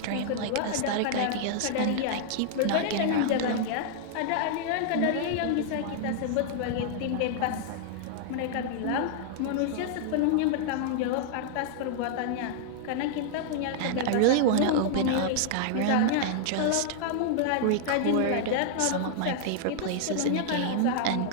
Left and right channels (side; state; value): both; different; correlation -0.01